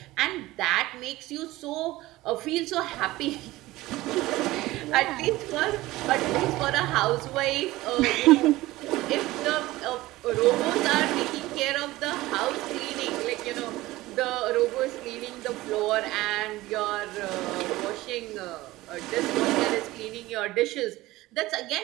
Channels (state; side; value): quieter; left; 18.1 dB